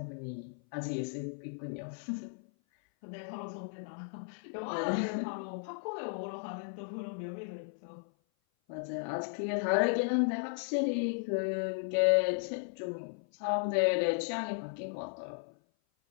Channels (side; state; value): right; silent; 54 dB below the other